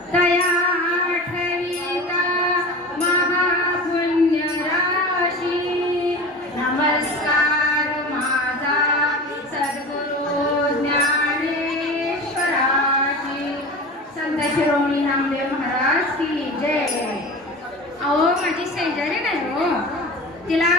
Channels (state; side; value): normal; both; correlation 0.33